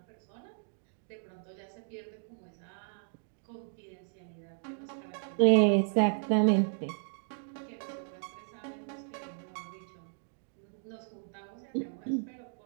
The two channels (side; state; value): left; silent; digital silence